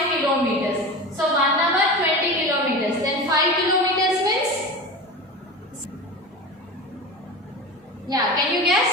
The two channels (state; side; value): normal; both; correlation 0.29